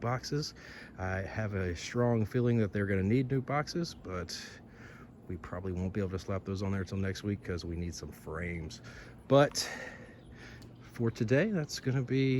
I have a strong feeling that they're going to need new boxes, but we probably won't be able to slap those on there until next week because we need some frames. But for today, that's going to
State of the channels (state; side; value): identical; both; correlation 1.00